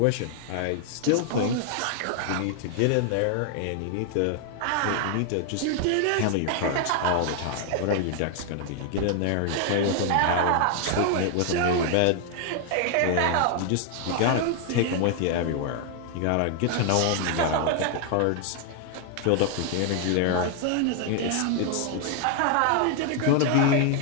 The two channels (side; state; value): both; different; correlation 0.00